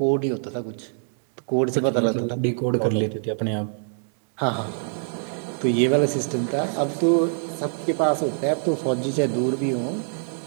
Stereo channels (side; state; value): left; silent; 62 dB below the other